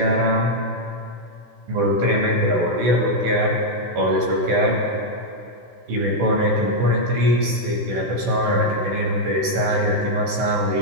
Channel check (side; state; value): left; late; 16 ms